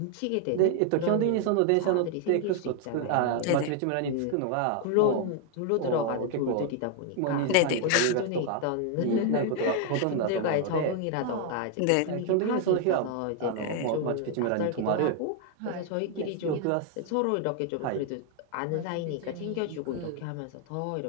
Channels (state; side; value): different; both; correlation 0.00